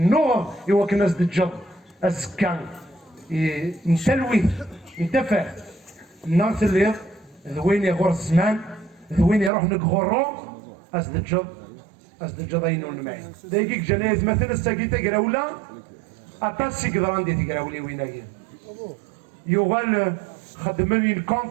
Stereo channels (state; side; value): drops out; left; at 9.5 s